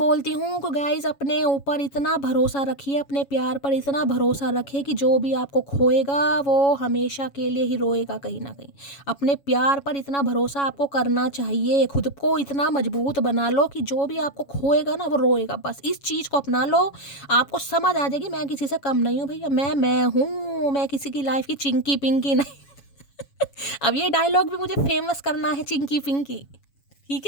हूँ कि गाइज अपने ऊपर इतना भरोसा रखिए, अपने प्यार पर इतना भरोसा रखिए कि जो भी आपको खोएगा वो हमेशा के लिए ही रोएगा कहीं ना कहीं। अपने प्यार पर इतना भरोसा आपको करना चाहिए, खुद को इतना मजबूत बना लो कि जो भी आपको खोएगा ना वो रोएगा। बस इस चीज़ को अपना लो, आपको समझ आ जाएगी मैं किसी से कम नहीं हूँ भैया, मैं हूँ, मैं किसी की लाइफ की चिंकी पिंकी नहीं। अब ये डायलॉग भी मुझे फेमस करना है, चिंकी पिंकी, ठीक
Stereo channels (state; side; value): late; right; 7.2 ms